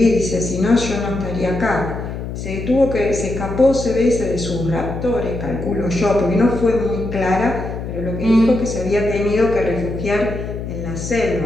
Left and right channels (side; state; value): left; noise; hum, 7 dB below the sound